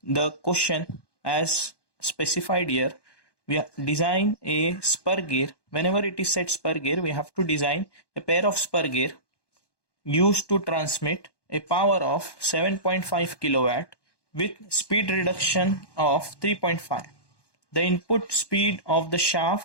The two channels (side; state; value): right; late; 1.1 ms